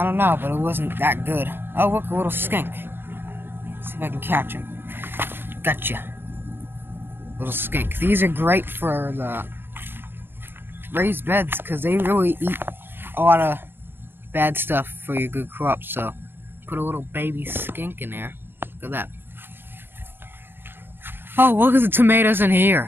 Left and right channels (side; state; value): left; late; 0.10 ms